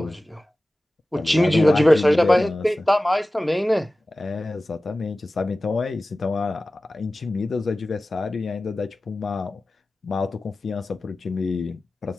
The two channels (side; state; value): both; normal; correlation 0.96